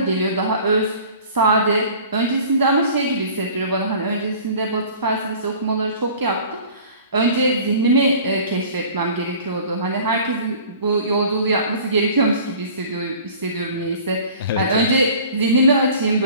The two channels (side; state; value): both; inverted; correlation -0.46